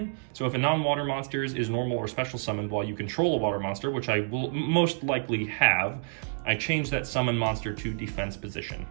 So if a non-water monster is normal or special summoned while you control a water monster, which I will most likely have, I change that summon monster to defense position.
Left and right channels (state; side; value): silent; left; digital silence